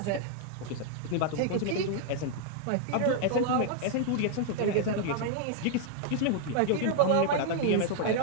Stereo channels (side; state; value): both; different; correlation 0.00